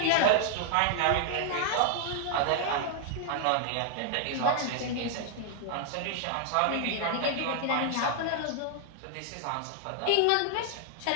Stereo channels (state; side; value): different; both; correlation 0.00